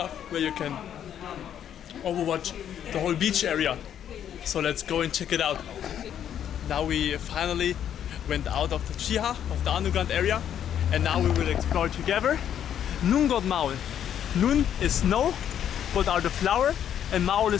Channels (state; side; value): quieter; right; 9.7 dB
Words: where you can overwatch the whole beach area. So let's go and check it out. Now we finally went out of the Chiha, of the underground area, and now we will explore together Nungot Maul. Nun is snow, but are the flower, and Maul